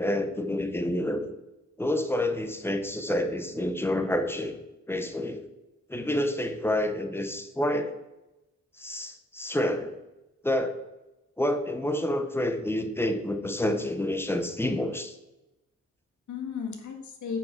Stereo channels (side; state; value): both; normal; correlation 0.73